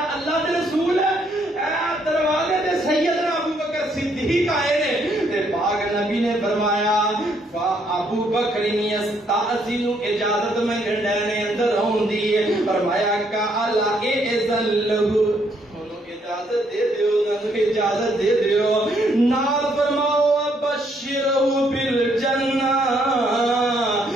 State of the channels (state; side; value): normal; both; correlation 0.70